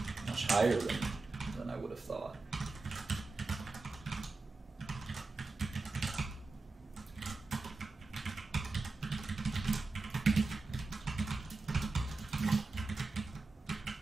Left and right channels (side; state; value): left; quieter; 3.6 dB